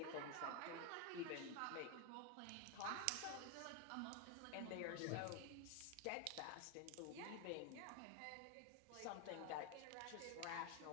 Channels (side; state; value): both; different; correlation 0.01